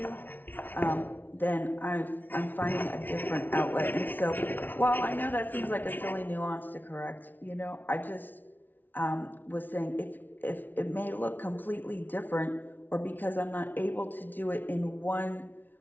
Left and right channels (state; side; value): late; right; 0.087 ms